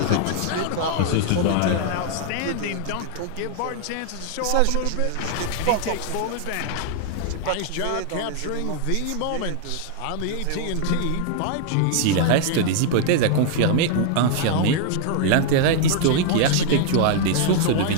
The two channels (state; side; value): different; both; correlation -0.01